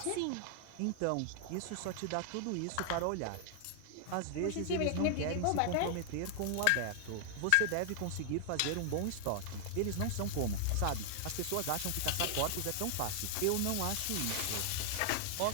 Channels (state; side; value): different; both; correlation 0.00